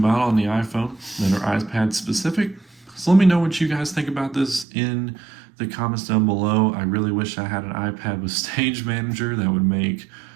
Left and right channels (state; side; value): drops out; left; at 4.7 s